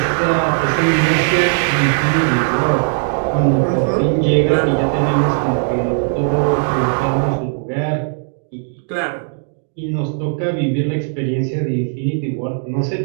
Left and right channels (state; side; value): silent; left; digital silence